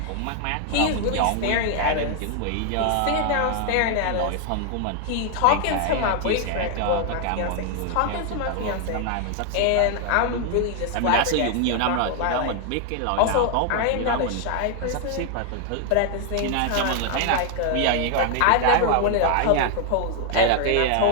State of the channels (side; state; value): both; different; correlation 0.00